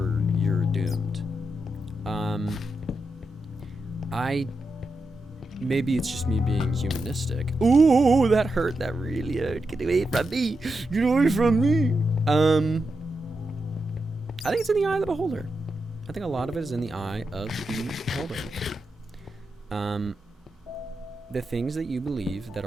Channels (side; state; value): both; normal; correlation 0.87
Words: doomed. Maybe it's just me being humanistic. Ooh, that hurt. That really hurt. Get away from me. Get away from me. I think it's in the eye of the beholder. I think a lot of it is in the eye of the beholder. The things that you believe that